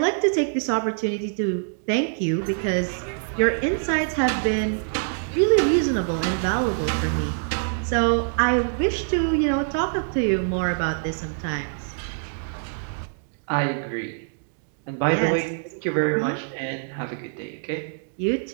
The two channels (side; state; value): left; silent; digital silence